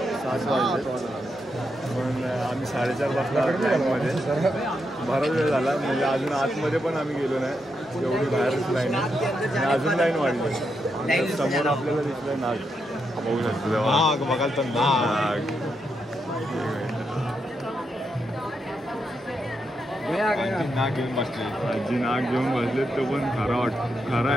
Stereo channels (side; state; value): both; normal; correlation 0.83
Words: वाजले पण आम्ही 4:30 वाजता लाईनमध्ये बराच वेळ झाला म्हणजे अजून आतमध्ये पण आम्ही गेलो नाही एवढी बाहेरच लाईन आहे आणि अजून लाईन वाढली समोर आपल्याला दिसलं नाग बघू शकतो नाग बघाल तर नाग नाग घेऊन बसले आजी नाग घेऊन बसले तो पण खरा